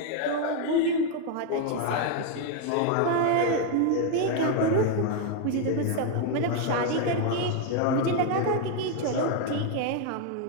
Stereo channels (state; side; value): different; both; correlation 0.01